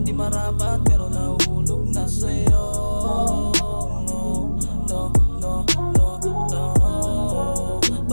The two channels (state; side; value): inverted; both; correlation -1.00